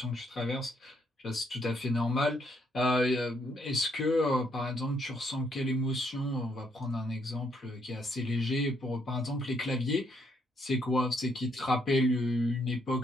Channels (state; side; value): normal; both; correlation 0.72